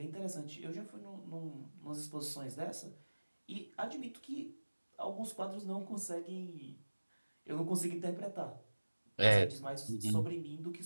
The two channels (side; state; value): both; inverted; correlation -1.00